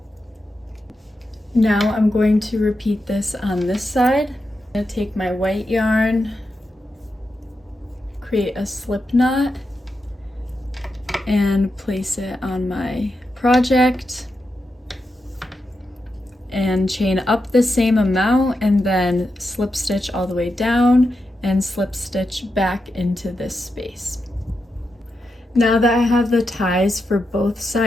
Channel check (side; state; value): both; normal; correlation 0.87